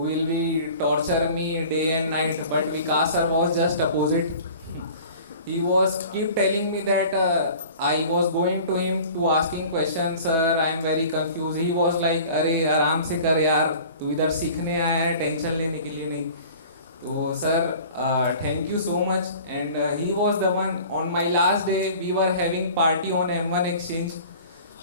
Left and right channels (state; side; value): inverted; both; correlation -0.44